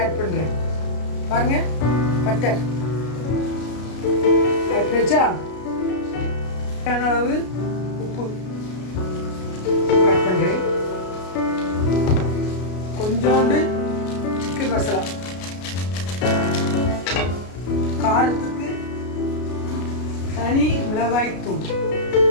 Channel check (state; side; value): late; right; 33 ms